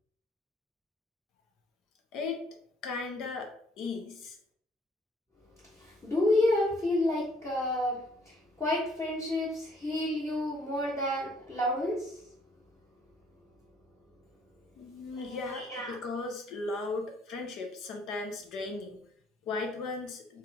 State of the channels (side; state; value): both; normal; correlation 0.64